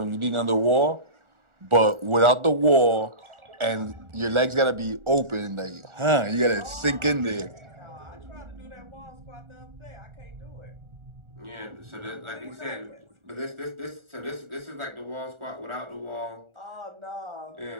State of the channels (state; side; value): late; left; 1.4 ms